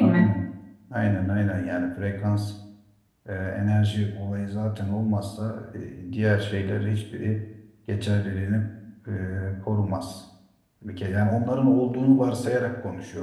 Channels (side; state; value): both; identical; correlation 1.00